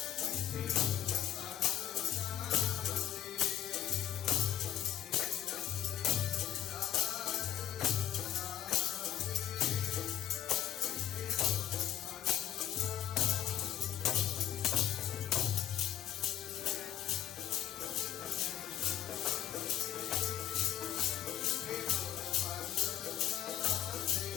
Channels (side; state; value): right; quieter; 11.6 dB